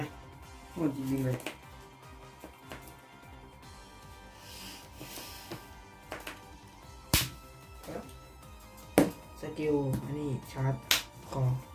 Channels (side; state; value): both; identical; correlation 1.00